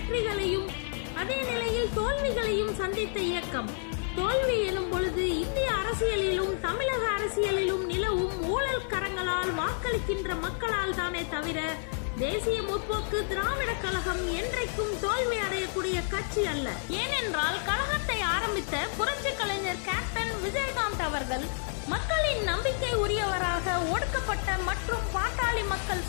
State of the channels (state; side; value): silent; right; digital silence